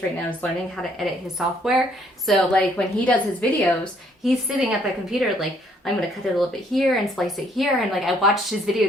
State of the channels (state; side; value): normal; both; correlation 0.66